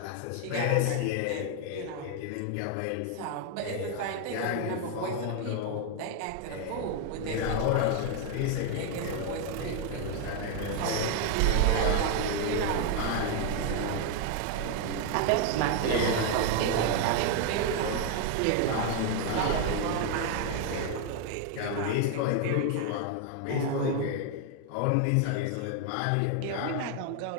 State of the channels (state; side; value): different; both; correlation 0.01